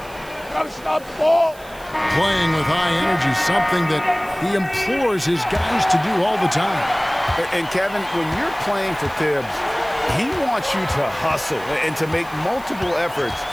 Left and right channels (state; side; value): noise; right; hiss, 22 dB below the sound